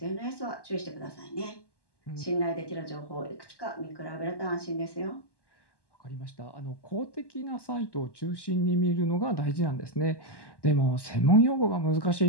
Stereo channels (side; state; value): right; late; 1.1 ms